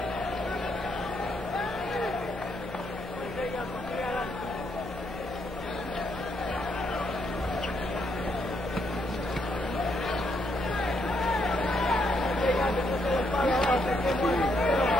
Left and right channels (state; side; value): normal; both; correlation 0.76